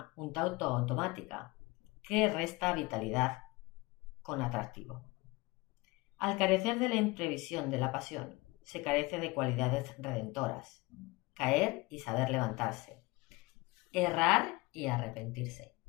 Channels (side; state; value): right; quieter; 23.1 dB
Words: un tanto automática, que resta vitalidad con atractivo. Al carecer de la imprevisión de la pasión, se carece de cualidades redentoras. Caer y saber levantarse. Errar y arrepentirse.